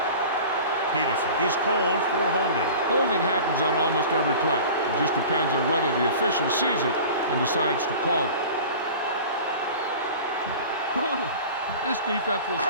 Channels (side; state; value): both; inverted; correlation -0.39